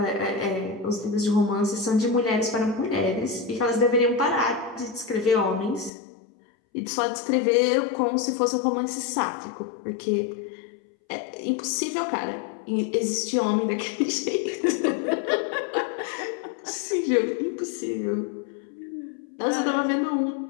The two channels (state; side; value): drops out; right; at 5.9 s